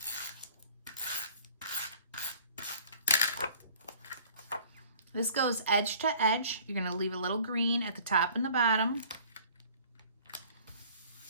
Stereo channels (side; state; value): both; inverted; correlation -0.51